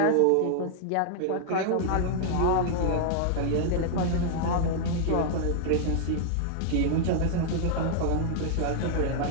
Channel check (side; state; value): both; different; correlation -0.01